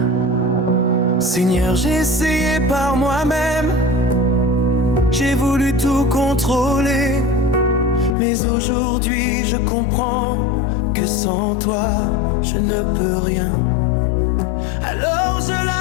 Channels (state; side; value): drops out; right; at 8.2 s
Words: Seigneur, j'ai essayé par moi-même, j'ai voulu tout contrôler, mais aujourd'hui je comprends que sans toi je ne peux rien. Alors je